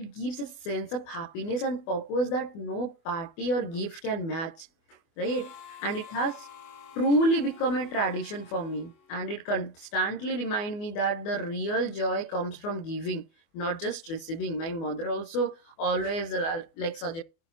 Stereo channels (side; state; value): right; late; 25 ms